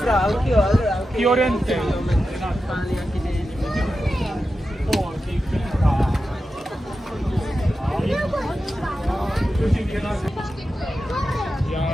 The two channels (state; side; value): normal; both; correlation 0.91